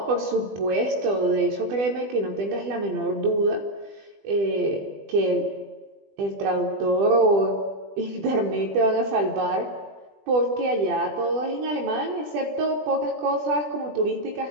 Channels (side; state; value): left; late; 20 ms